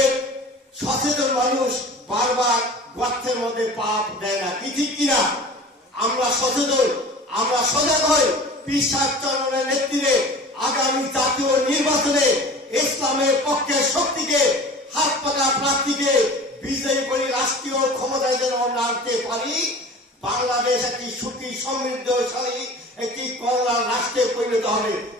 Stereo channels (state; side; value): normal; both; correlation 0.40